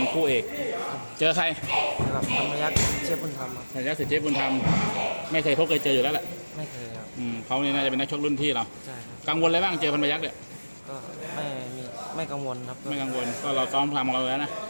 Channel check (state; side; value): inverted; both; correlation -1.00